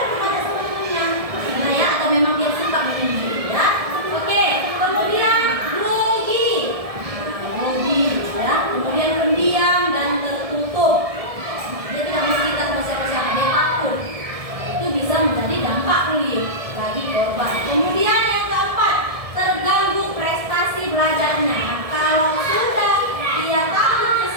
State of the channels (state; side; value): late; left; 1.7 ms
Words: bertanya sama temannya, ya, atau memang dia suka menyendiri, ya. Oke, kemudian grogi. Nah, grogi, ya. Kemudian pendiam dan tertutup. Dia tidak mau cerita sama siapa-siapa, dia takut. Itu bisa menjadi dampak bullying bagi korban. Kemudian yang keempat, terganggu prestasi belajarnya. Kalau sudah dia takut ke